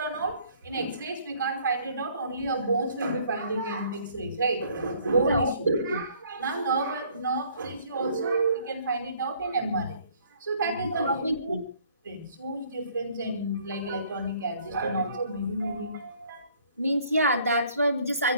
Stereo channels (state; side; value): inverted; both; correlation -0.60